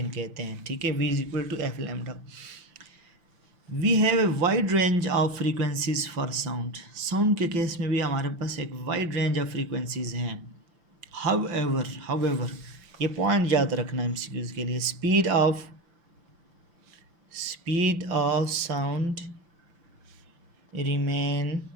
कहते हैं. ठीक है, V is equal to F lambda. We have a wide range of frequencies for sound. Sound के केस में भी हमारे पास एक वाइड रेंज ऑफ फ्रीक्वेंसीज हैं. However, ये पॉइंट याद रखना MCQs के लिए. Speed of sound remain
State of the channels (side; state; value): left; late; 5.8 ms